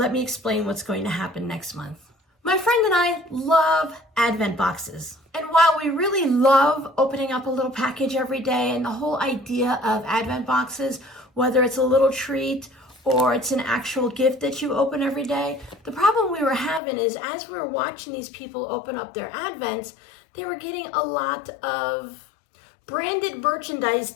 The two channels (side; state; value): right; drops out; at 16.8 s